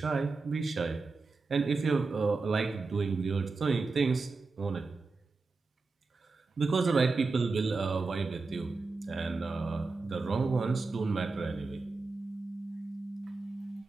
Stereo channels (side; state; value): left; quieter; 4.0 dB